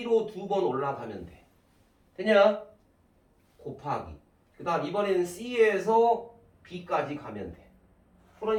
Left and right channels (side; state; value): both; identical; correlation 1.00